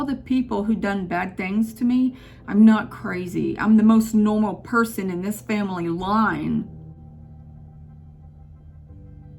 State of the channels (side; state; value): both; identical; correlation 1.00